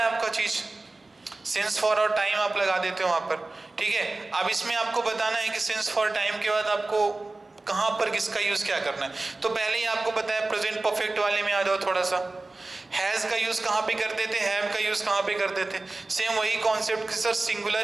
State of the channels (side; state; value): left; quieter; 3.2 dB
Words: आपका चीज, सिंस फॉर और टाइम आप लगा देते हो वहां पर। ठीक है, अब इसमें आपको बताना है कि सिंस फॉर टाइम के बाद आपको कहां पर किसका यूज क्या करना है। तो पहले ही आपको बताया, प्रेजेंट परफेक्ट वाले में आ जाओ थोड़ा सा। हैज का यूज कहां पे करते थे, हैव का यूज कहां पे करते थे, सेम वही कॉन्सेप्ट कि सर